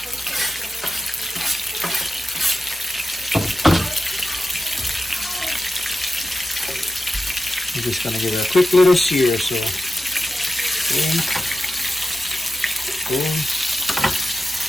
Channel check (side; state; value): both; normal; correlation 0.93